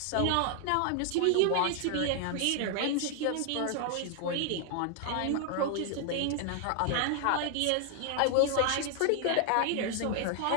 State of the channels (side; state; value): both; different; correlation 0.00